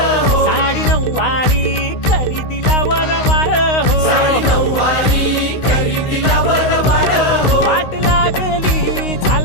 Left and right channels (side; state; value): right; late; 16 ms